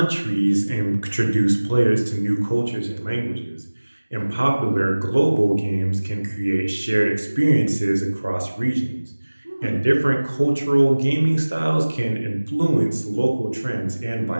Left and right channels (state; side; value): inverted; both; correlation -1.00